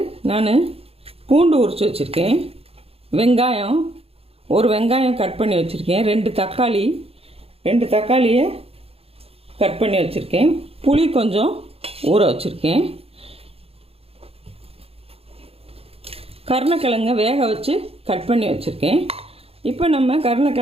நான் பூண்டு உரித்து வச்சுருக்கேன், ஒரு வெங்காயம் கட் பண்ணி வச்சுருக்கேன், ரெண்டு தக்காளியை கட் பண்ணி வச்சுருக்கேன், புளி கொஞ்சம் ஊற வச்சுருக்கேன், கருணக்கிழங்கை வேக வச்சு கட் பண்ணி வச்சுருக்கேன். இப்போ நம்ம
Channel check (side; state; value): left; late; 0.28 ms